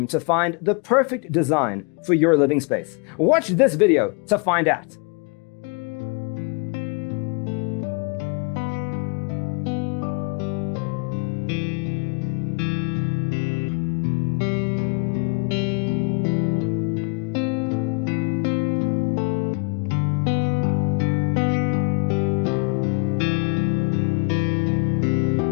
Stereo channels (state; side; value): quieter; right; 33.3 dB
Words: to find the perfect design for your living space? Watch this video to find out.